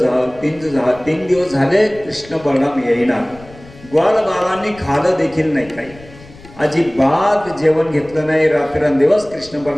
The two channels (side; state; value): left; noise; rumble, 21 dB below the sound